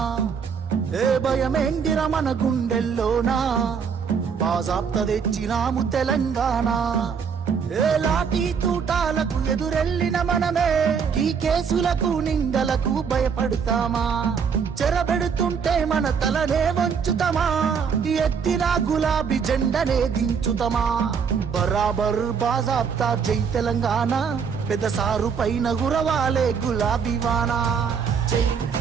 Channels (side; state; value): left; quieter; 6.5 dB